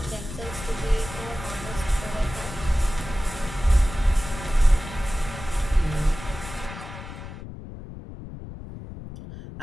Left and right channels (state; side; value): noise; left; rumble, 12 dB below the sound